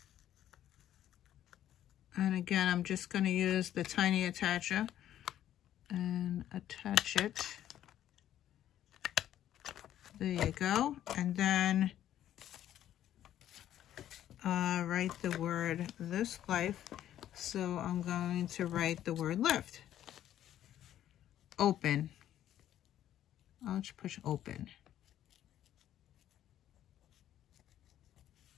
And again, I'm just going to use the tiny attacher and attach it. There you go. And then write the word This Life. So I'm going to write the word lift. Open. I'll just push open.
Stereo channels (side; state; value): right; quieter; 11.7 dB